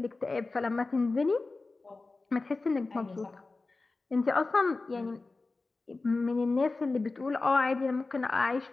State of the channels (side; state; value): right; quieter; 3.6 dB